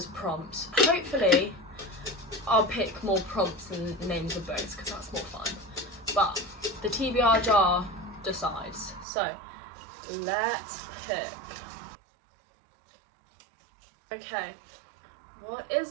prompts. Hopefully I'll pick more prompts than names of books because that's more fun, but the TBR jar decides. So Let's pick. Okay, what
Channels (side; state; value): left; drops out; at 9.1 s